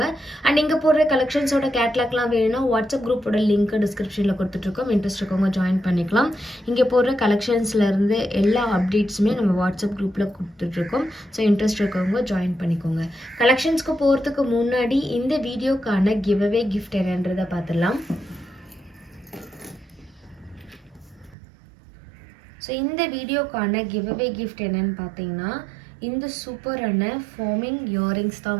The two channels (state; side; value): drops out; left; at 21.4 s